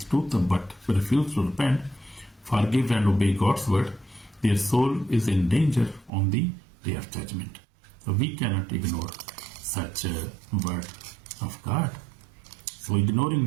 but refuse to repent, forgive and obey God's word, their soul is in danger on the day of judgment. So we cannot ignore such a word of God. So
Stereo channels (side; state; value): left; drops out; at 6.1 s